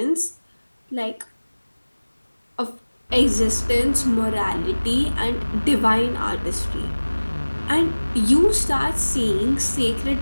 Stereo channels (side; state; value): both; inverted; correlation -1.00